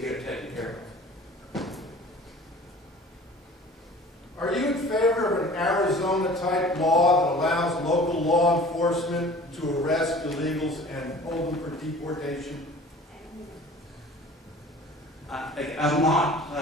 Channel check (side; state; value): both; normal; correlation 0.45